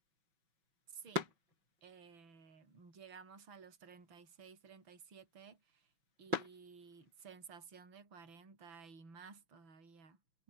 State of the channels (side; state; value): left; late; 6.0 ms